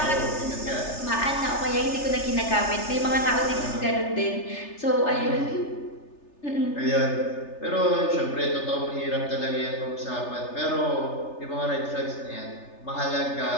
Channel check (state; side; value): late; right; 3.3 ms